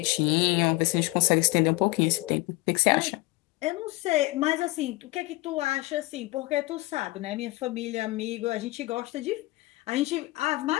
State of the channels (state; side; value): quieter; right; 21.2 dB